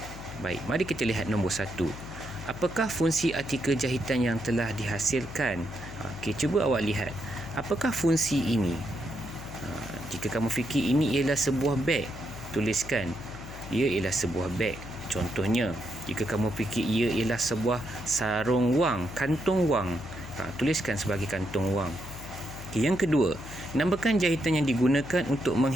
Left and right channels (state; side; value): noise; left; hum, 13 dB below the sound